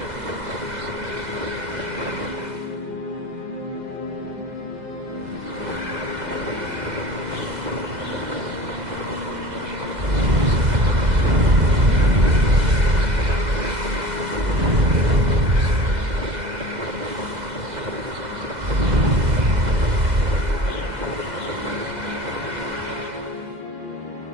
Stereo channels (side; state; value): left; late; 2.0 ms